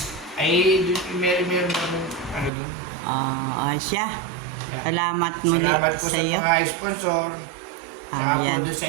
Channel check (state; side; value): drops out; left; at 2.5 s